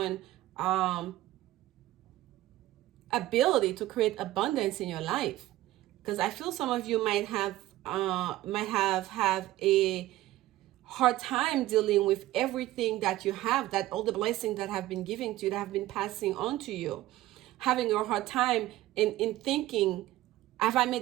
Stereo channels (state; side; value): quieter; left; 15.9 dB